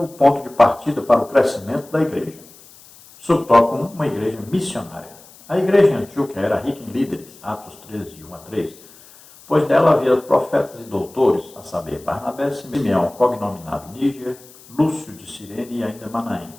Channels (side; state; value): left; noise; hiss, 23 dB below the sound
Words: o ponto de partida para o crescimento da igreja. Subtópico 1, uma igreja missionária. A igreja em Antioquia era rica em líderes, Atos 13, de 1 a 3, pois dela havia profetas e doutores, a saber, Barnabé, Simeão, cognominado Níger, Lúcio de Cirene e ainda Manaém,